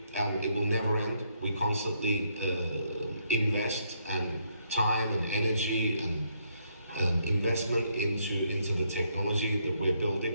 and it will never end. We constantly invest and time and energy and investment into the technology that we're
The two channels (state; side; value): inverted; both; correlation -0.74